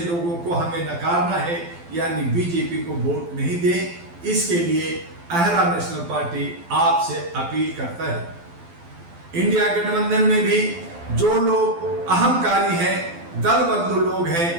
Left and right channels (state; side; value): late; left; 12 ms